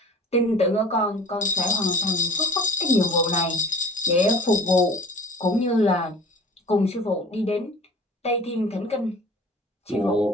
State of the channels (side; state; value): both; normal; correlation 0.44